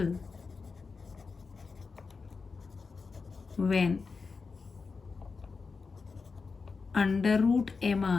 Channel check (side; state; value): right; quieter; 4.7 dB